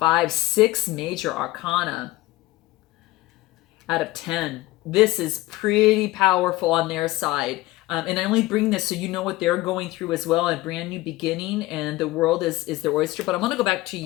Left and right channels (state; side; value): quieter; right; 18.5 dB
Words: 6 major arcana out of 10. This is pretty powerful on their side. And I only bring this so you know what they're going through as well, a brand new beginning, and the world is their oyster. But I want to go back to